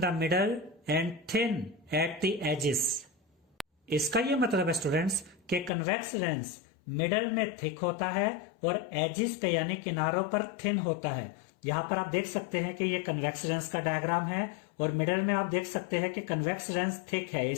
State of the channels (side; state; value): right; drops out; at 5.7 s